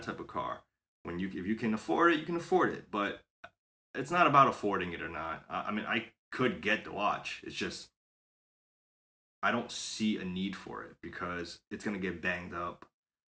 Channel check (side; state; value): both; identical; correlation 1.00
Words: type of car? If you can afford it, you can afford it. But it's not about affording it or not. I mean, I could get the watch. It's just I don't see a need for it because it's gonna get banged up,